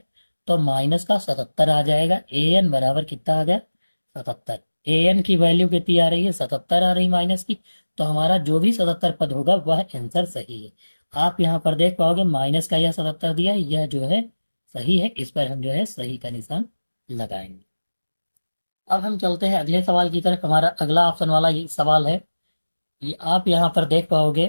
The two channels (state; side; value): inverted; both; correlation -1.00